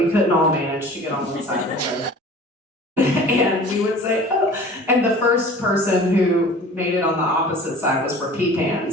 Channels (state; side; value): normal; both; correlation 0.43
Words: couldn't all manage to get on one side of the road. And we would say, oh, and the first person who made it on the opposite side was for Peepan.